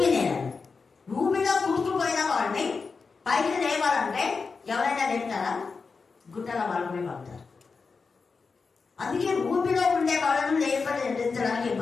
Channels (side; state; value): right; quieter; 4.8 dB